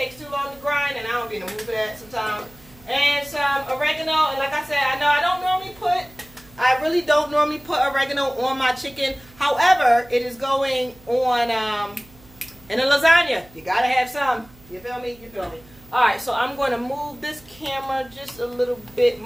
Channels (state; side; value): noise; right; hum, 25 dB below the sound